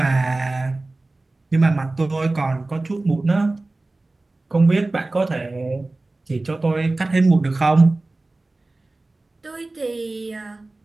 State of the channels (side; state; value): left; quieter; 3.0 dB